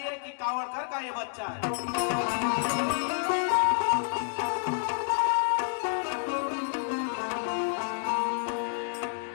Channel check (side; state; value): right; silent; digital silence